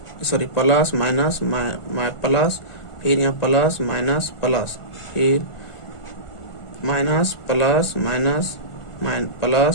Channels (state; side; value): late; right; 1.4 ms